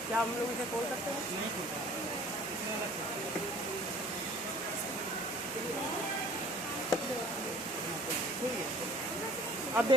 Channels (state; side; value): normal; both; correlation 0.50